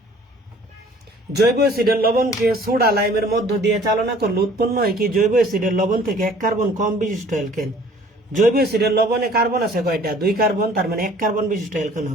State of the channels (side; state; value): both; normal; correlation 0.53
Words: জৈব অ্যাসিডের লবণকে সোডা লাইমের মধ্য দিয়ে চালনা করলে উৎপন্ন হয় কি? জৈব অ্যাসিডের লবণ থেকে 1 কার্বন কম বিশিষ্ট অ্যালকেন। জৈব অ্যাসিডের লবণে কার্বন আছে কয়টা? 2 কার্বন, তার মানে 1 কার্বন বিশিষ্ট অ্যালকেন